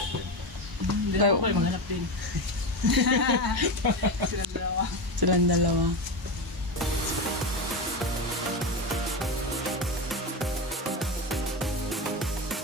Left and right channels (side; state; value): both; normal; correlation 0.17